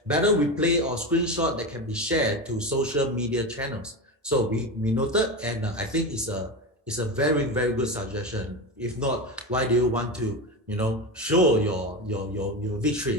Battle replay or screenshot that can be shared to social media channels. So we noted, and I think it's a very, very good suggestion. If not, why do you want to, you know, show your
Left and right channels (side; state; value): both; normal; correlation 0.21